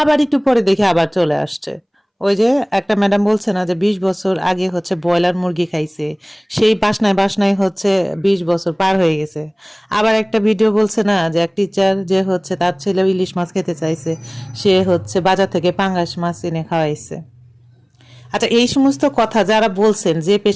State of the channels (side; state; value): both; identical; correlation 1.00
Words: একটু পরে দেখি আবার চলে আসছে। ওই যে একটা ম্যাডাম বলছে না যে 20 বছর আগে হচ্ছে ব্রয়লার মুরগি খাইছে, সেই বাসনায় বাসনায় হচ্ছে 20 বছর পার হয়ে গেছে। আবার একটা ভিডিও বলছে না যে এক টিচার যে হচ্ছে তার ছেলে ইলিশ মাছ খেতে চাইছে, সে হচ্ছে বাজার থেকে পাঙ্গাস মাছ এনে খাওয়াইছে। আচ্ছা, এই সমস্ত কথা যারা বলছেন, যে